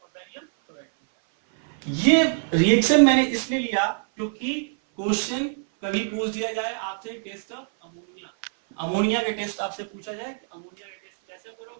और बैरियम क्लोराइड बन रहा है। ये रिएक्शन मैंने इसलिए लिया क्योंकि क्वेश्चन कभी पूछ दिया जाए आपसे टेस्ट ऑफ अमोनिया, अमोनिया का टेस्ट आपसे पूछा जाए कि अमोनिया का टेस्ट कैसे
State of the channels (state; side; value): silent; left; 57 dB below the other